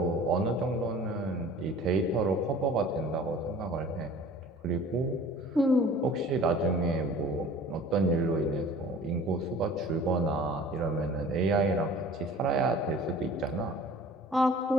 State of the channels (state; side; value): normal; both; correlation 0.46